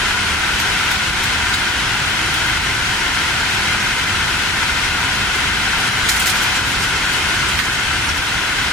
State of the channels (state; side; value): normal; both; correlation 0.42